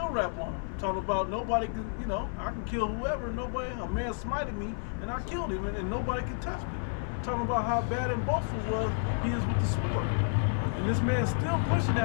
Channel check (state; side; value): silent; right; 56 dB below the other